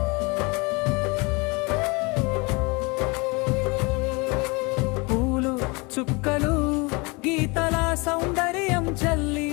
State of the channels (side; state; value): right; quieter; 27.8 dB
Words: పూలు చుక్కలు గీతల సౌందర్యం చల్లి